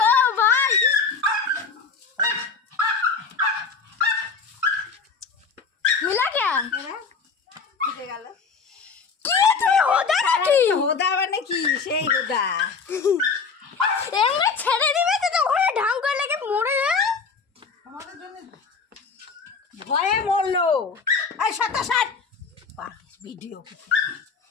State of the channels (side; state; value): right; quieter; 5.1 dB